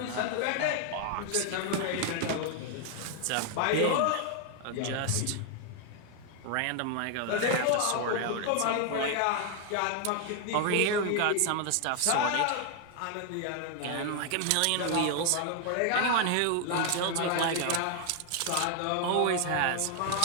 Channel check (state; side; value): different; both; correlation 0.00